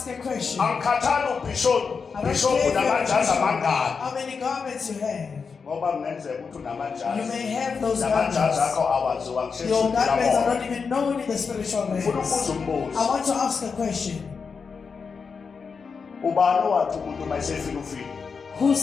a question. Angikhathali ubishop namajazi amangaki. How many garments you have? Ngoba kungenzeka ukuthi unamajazi. You may have those garments. Namajazi akho awaziwa Your garments are not even known in the spiritual realm. Ufuna ukubuza umbuzo. I want to ask a question. Ubani wathi umuntu mayesefika ufika? Who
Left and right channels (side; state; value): right; quieter; 5.4 dB